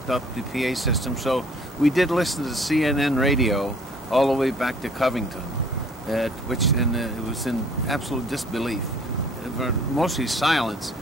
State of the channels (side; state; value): both; normal; correlation 0.56